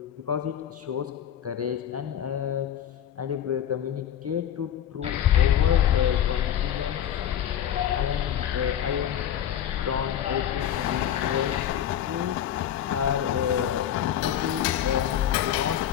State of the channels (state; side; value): quieter; right; 10.2 dB